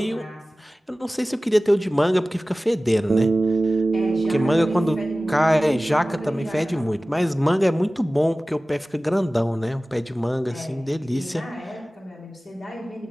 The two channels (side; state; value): both; normal; correlation 0.97